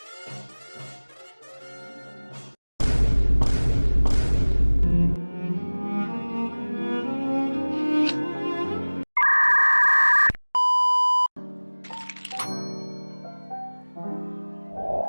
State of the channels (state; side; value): inverted; both; correlation -1.00